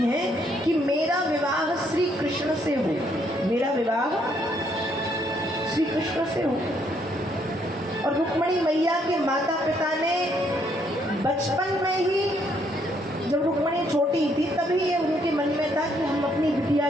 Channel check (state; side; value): normal; both; correlation 0.70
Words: हैं कि मेरा विवाह श्री कृष्ण से हो, मेरा विवाह श्री कृष्ण से हो। और रुक्मणी मैया के माता पिता ने बचपन में ही, जब रुक्मणी छोटी थी तभी ये उनके मन में था कि हम अपनी बिटिया